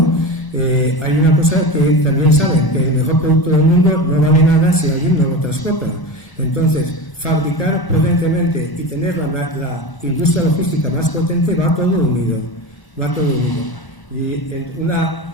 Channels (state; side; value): late; right; 1.0 ms